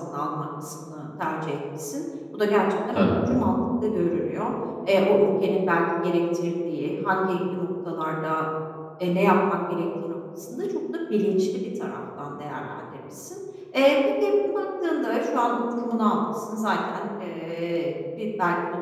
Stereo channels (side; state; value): both; identical; correlation 1.00